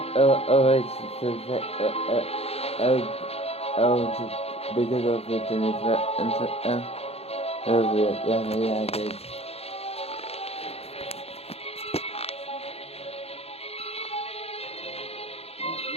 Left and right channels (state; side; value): late; right; 0.29 ms